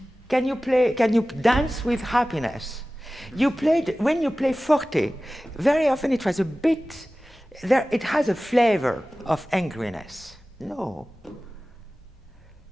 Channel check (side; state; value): both; normal; correlation 0.97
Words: Can you dance with happiness? When you play forte, very often it was a bit, it has a flavor of angriness. No.